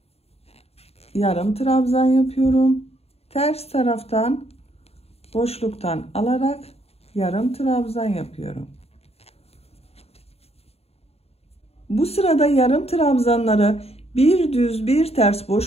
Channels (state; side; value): late; right; 0.30 ms